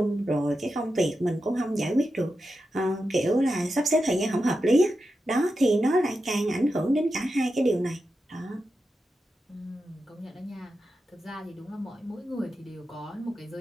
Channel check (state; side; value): normal; both; correlation 0.89